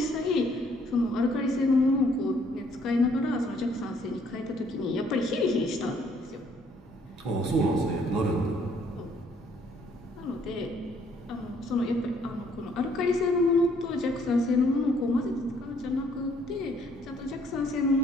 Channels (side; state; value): both; normal; correlation 0.65